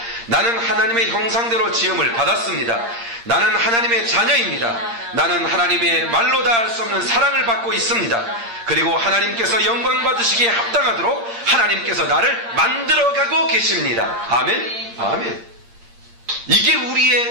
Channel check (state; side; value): late; left; 8.7 ms